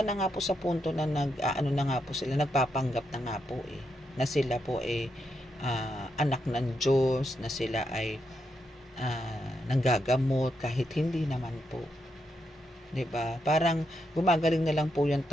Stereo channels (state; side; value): normal; both; correlation 0.82